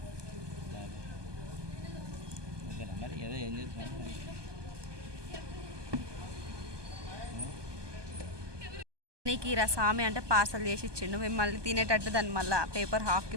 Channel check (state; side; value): late; left; 1.2 ms